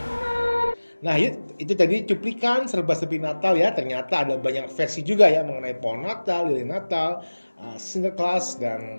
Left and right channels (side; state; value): both; inverted; correlation -1.00